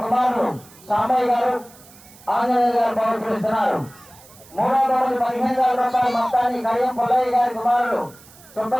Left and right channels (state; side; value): noise; right; hiss, 23 dB below the sound